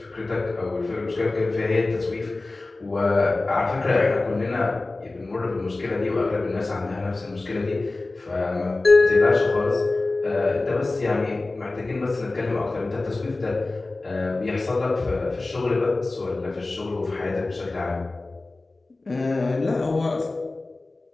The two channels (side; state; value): right; quieter; 3.2 dB